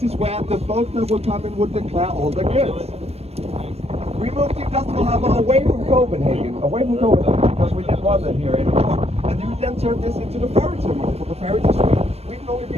is where the boat that will come in would declare all the goods. We moved the industrial harbor away from Copenhagen, because we didn't want it here anymore. And we then turned this into the ferry terminal for the ferry to Sweden. Sweden only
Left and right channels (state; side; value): late; left; 0.30 ms